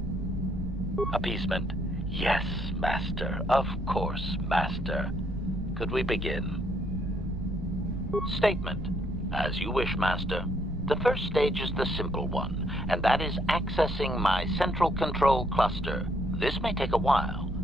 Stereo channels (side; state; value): right; noise; rumble, 9 dB below the sound